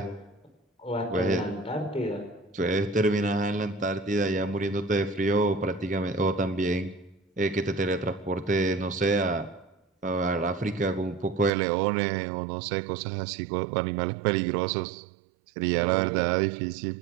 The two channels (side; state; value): left; drops out; at 11.5 s